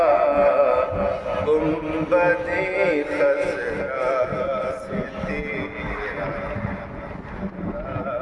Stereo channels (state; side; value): identical; both; correlation 1.00